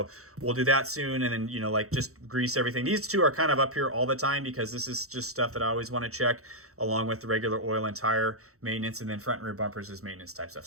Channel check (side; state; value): left; late; 0.64 ms